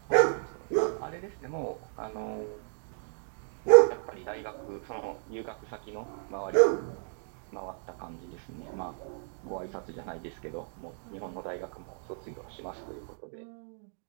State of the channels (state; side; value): silent; left; digital silence